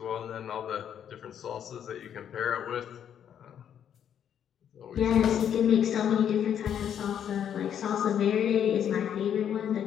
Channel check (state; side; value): quieter; right; 9.1 dB